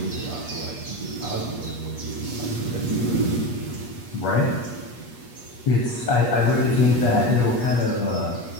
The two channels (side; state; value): right; late; 8.4 ms